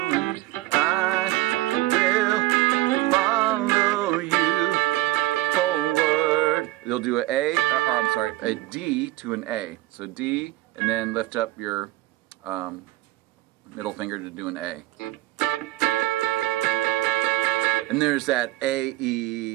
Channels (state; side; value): quieter; left; 17.4 dB